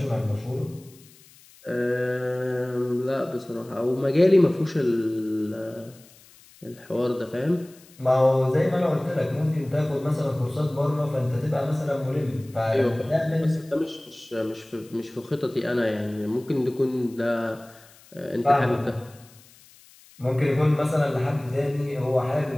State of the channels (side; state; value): left; noise; hiss, 25 dB below the sound